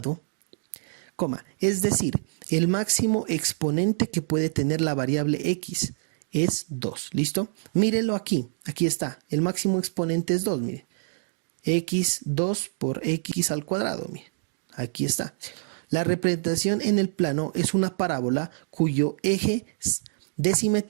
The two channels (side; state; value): left; silent; digital silence